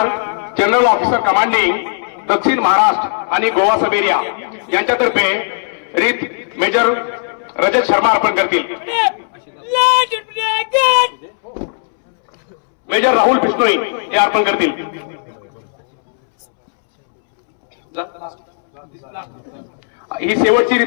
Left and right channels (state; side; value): silent; right; 68 dB below the other